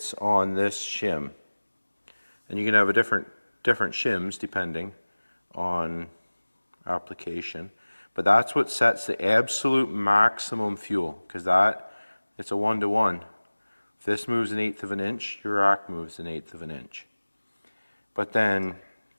on this shim. And you can have a different shims depending on application. But that's what sets the absolute maximum fuel, because it's a 1-to-1. If this moves 1/8 of an inch, your rack moves 1/8 of an inch. But then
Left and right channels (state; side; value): inverted; both; correlation -1.00